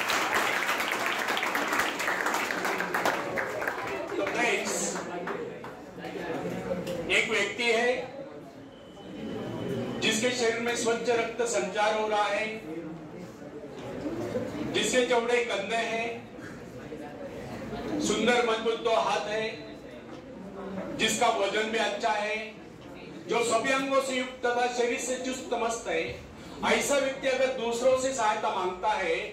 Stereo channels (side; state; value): both; identical; correlation 1.00